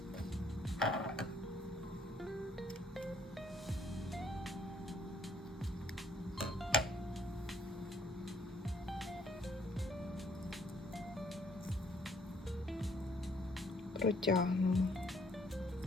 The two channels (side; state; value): both; normal; correlation 0.64